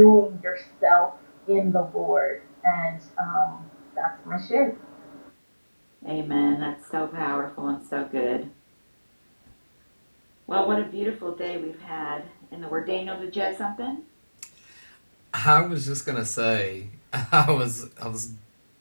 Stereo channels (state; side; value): inverted; both; correlation -1.00